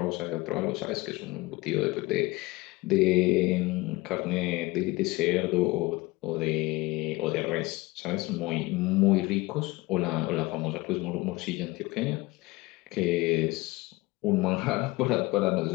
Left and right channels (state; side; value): quieter; right; 21.5 dB